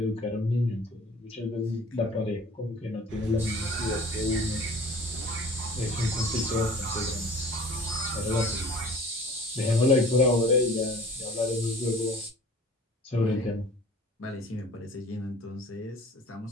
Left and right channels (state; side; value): normal; both; correlation 0.46